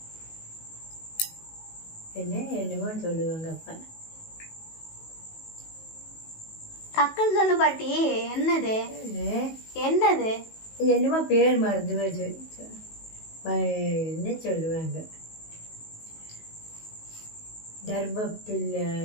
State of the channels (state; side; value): late; right; 19 ms